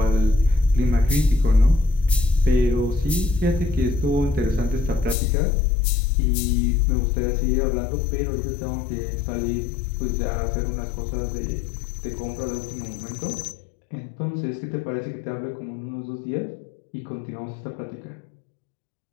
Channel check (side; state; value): right; drops out; at 5.2 s